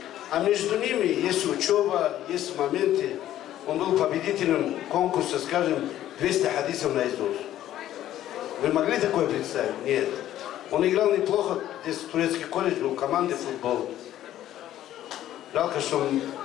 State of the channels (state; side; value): quieter; right; 12.7 dB